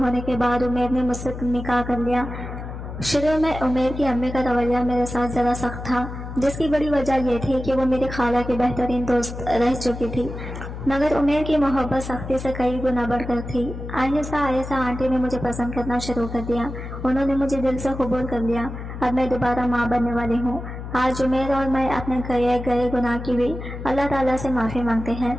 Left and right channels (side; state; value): left; noise; hum, 9 dB below the sound